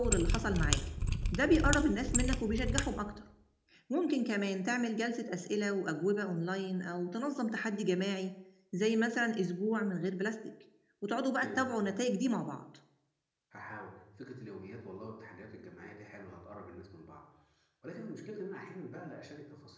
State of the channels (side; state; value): both; identical; correlation 1.00